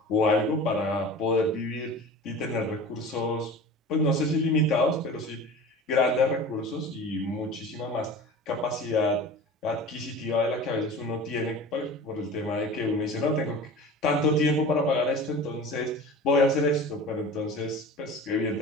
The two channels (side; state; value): both; normal; correlation 0.37